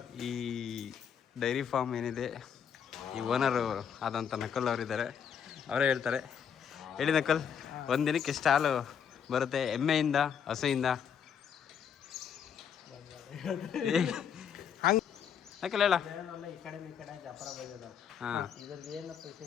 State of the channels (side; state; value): right; quieter; 7.9 dB